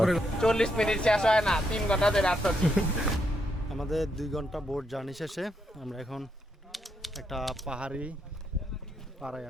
40 মিনিট শেষ হয় না 3 ঘন্টা ধরে আসছি। আমাদের 2 ঘন্টা বোট জার্নি শেষে আমরা এখন একটা পাহাড়ি পাড়ায়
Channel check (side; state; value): both; normal; correlation 0.79